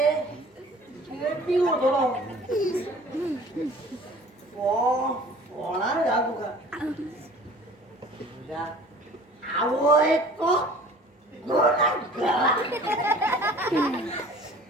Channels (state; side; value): normal; both; correlation 0.47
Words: पिवो थोडो होणार का तुका तुझ्या आवो एक